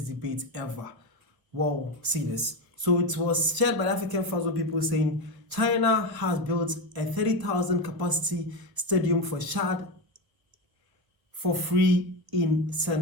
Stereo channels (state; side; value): late; left; 1.7 ms